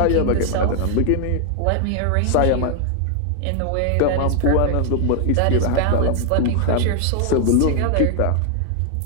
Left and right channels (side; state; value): both; different; correlation 0.00